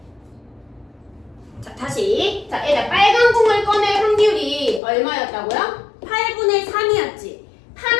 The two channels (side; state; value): right; drops out; at 4.8 s